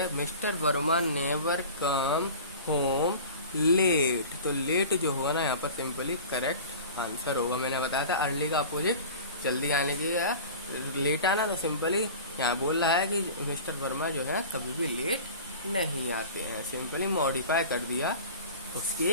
mister Verma never come home late. तो लेट जो होगा ना यहाँ पर सिंपली करेक्ट आंसर होगा। मैंने बताया था अर्ली का अपोजिट जल्दी आने की, लेट आना। तो सिंपली यहाँ बोल रहा है कि मिस्टर वर्मा जो है कभी भी लेट नहीं आते हैं। सिंपली मॉडिफाई कर दिया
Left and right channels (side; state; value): both; inverted; correlation -0.38